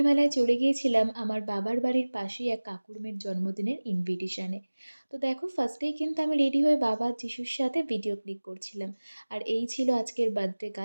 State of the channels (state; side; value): inverted; both; correlation -1.00